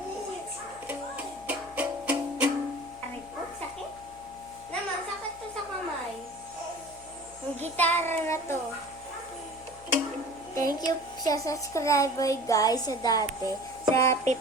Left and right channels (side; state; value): left; noise; hum, 22 dB below the sound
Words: Aray po, sakit. Naman, sakit to sa kamay. Ang gitara na to. Thank you sa subscriber guys sa dati. Sa